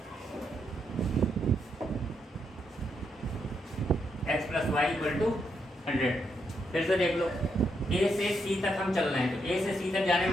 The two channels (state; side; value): normal; both; correlation 0.79